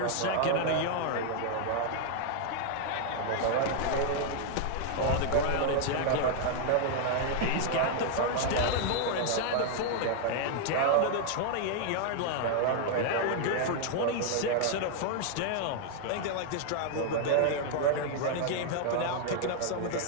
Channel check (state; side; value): different; both; correlation -0.01